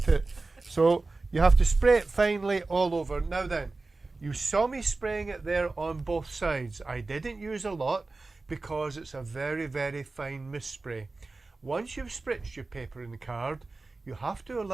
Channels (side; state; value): left; quieter; 3.5 dB